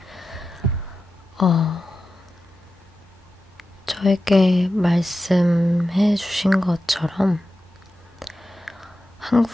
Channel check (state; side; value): normal; both; correlation 0.92